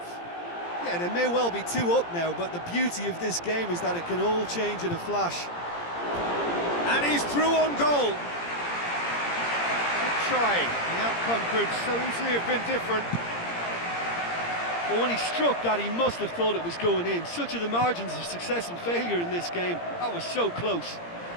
Yeah, they may well be 2 up now, but the beauty of this game is that it can all change in a flash. And he's through on goal. Good try. The outcome could so easily have been different. Well, when he struck that, he must have thought it was going in. Such are the margins of success and failure in this game. That was so close.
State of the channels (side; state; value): right; late; 17 ms